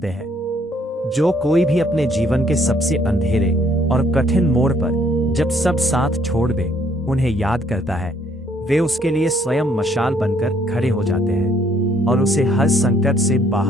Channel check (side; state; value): both; normal; correlation 0.66